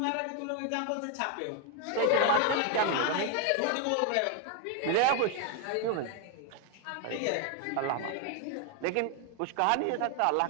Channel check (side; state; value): both; different; correlation 0.01